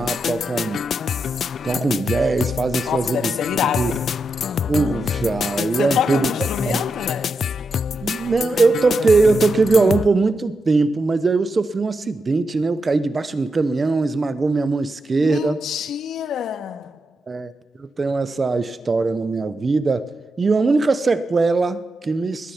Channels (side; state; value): both; normal; correlation 0.86